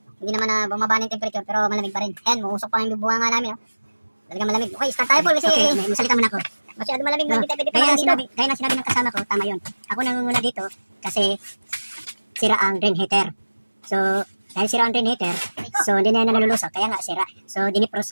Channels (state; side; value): inverted; both; correlation -1.00